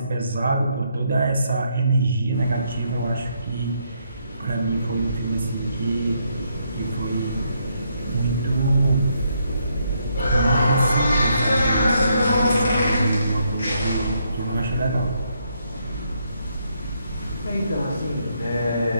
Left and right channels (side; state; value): both; inverted; correlation -0.75